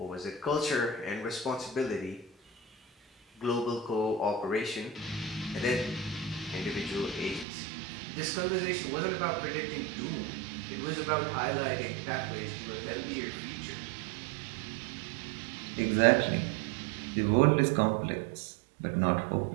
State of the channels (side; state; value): left; drops out; at 7.5 s